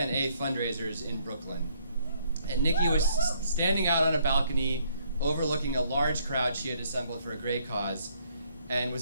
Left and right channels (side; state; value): both; inverted; correlation -0.66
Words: A fundraisers in Brooklyn. And Niki was standing out on a balcony overlooking a large crowd she had assembled for a great cause and